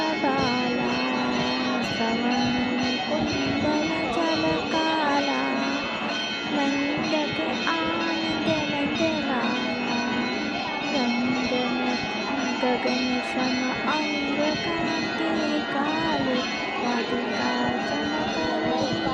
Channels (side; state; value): both; identical; correlation 1.00